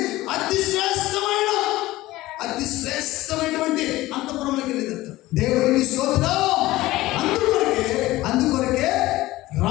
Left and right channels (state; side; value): quieter; right; 17.6 dB